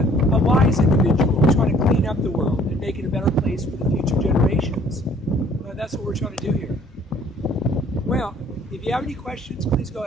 wise individual trying to clean up the world and make it a better place for the future generations. That's what we're trying to do here. Well, if you have any questions, please go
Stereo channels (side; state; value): both; normal; correlation 0.58